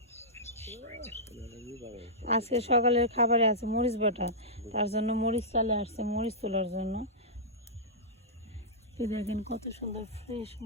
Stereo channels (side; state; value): both; normal; correlation -0.14